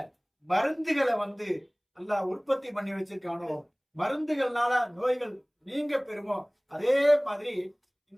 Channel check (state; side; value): identical; both; correlation 1.00